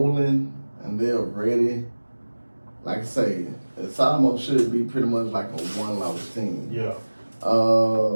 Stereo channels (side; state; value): both; inverted; correlation -1.00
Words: and they're ready, like I say, it's almost should be pretty much like a one-loss team. Yeah.